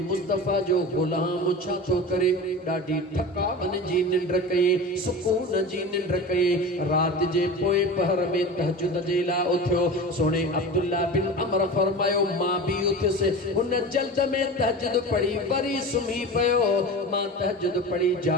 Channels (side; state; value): both; normal; correlation 0.31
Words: मुस्तफ़ा जो ग़ुलाम छा थो करे। ॾाढी थकावन जी निंड कई, सुकून जी निंड कई। राति जे पोइ पहर में तहजुद जे लाइ उथियो। सोने अब्दुल्ला बिन अमर फरमायो मां बि उथियुसि, हुन जल्द में तहजुद पढ़ी वरी सुम्ही पियो। मां तहजुद पढ़ी